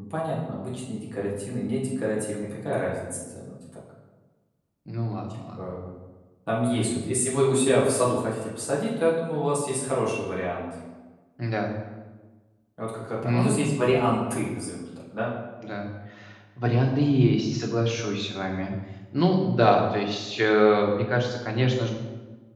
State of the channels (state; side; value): identical; both; correlation 1.00